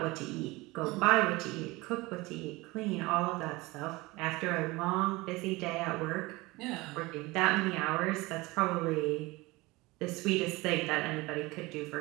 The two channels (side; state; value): left; quieter; 22.0 dB